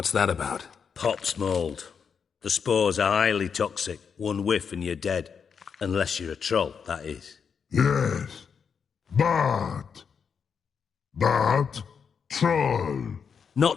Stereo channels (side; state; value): right; quieter; 6.5 dB